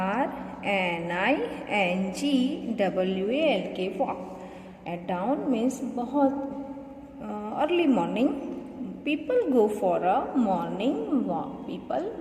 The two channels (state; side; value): identical; both; correlation 1.00